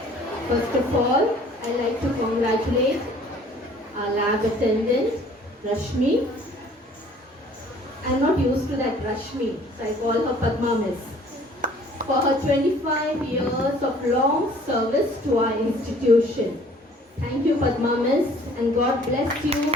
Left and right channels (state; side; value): normal; both; correlation 0.54